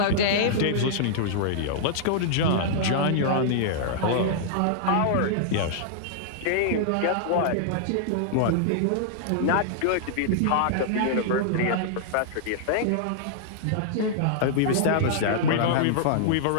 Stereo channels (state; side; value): different; both; correlation -0.01